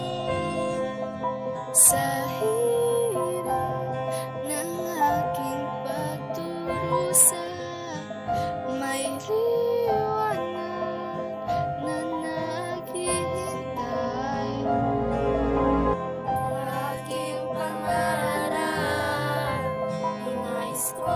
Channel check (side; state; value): both; identical; correlation 1.00